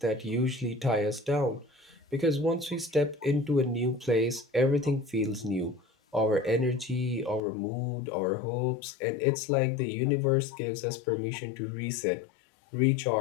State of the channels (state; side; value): drops out; right; at 7.4 s